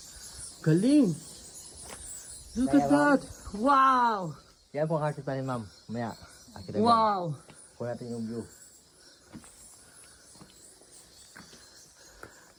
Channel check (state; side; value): identical; both; correlation 1.00